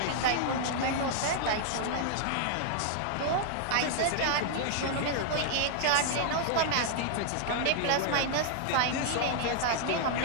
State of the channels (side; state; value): both; different; correlation -0.01